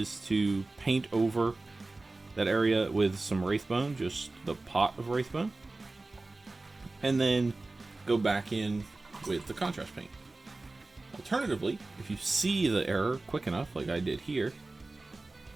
to paint over that area with some Wraithbone, just the pot of Wraithbone, and then go back in with the contrast paint. Alternatively, if you see the error quick enough, like I did here,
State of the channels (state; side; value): quieter; left; 3.2 dB